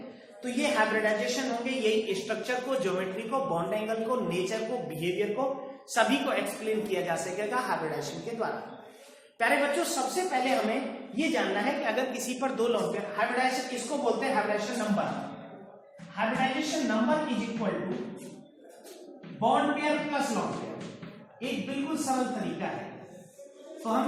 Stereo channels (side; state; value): both; identical; correlation 1.00